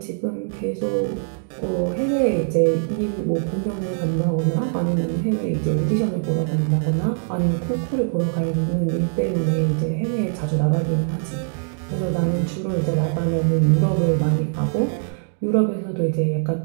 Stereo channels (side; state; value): left; silent; digital silence